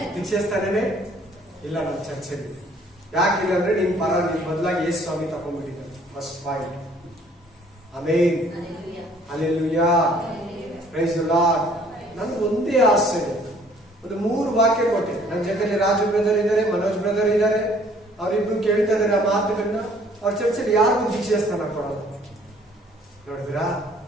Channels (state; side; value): normal; both; correlation 0.58